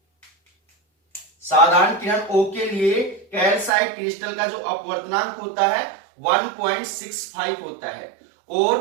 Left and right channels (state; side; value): drops out; left; at 3.7 s